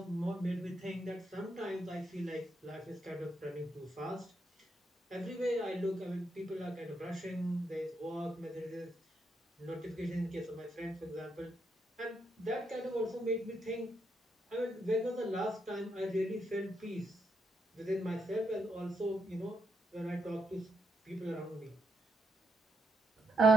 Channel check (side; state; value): both; normal; correlation 0.79